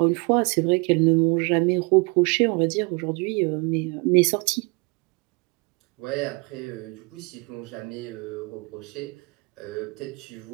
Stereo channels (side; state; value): left; quieter; 30.1 dB